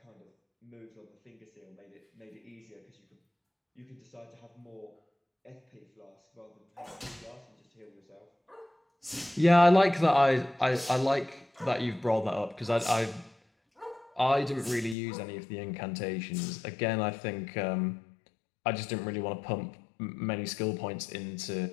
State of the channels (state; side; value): drops out; right; at 15.0 s